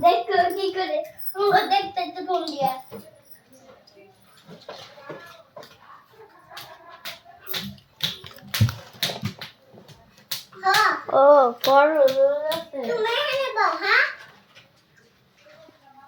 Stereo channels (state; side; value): identical; both; correlation 1.00